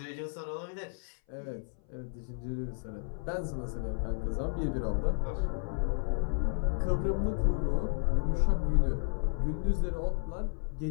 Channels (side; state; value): right; silent; 56 dB below the other